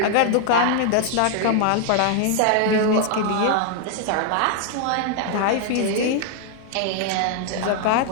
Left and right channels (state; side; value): different; both; correlation 0.00